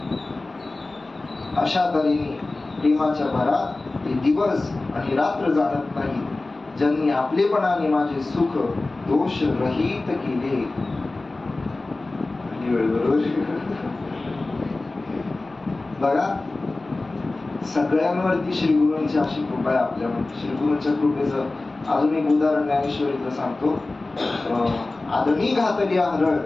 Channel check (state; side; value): quieter; right; 3.2 dB